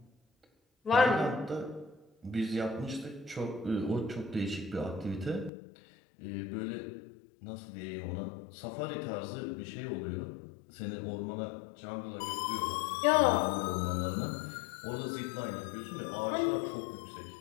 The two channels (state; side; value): drops out; right; at 5.5 s